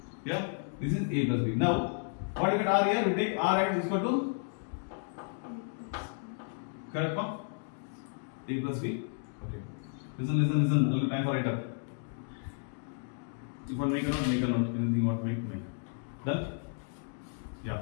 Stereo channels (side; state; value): right; silent; 56 dB below the other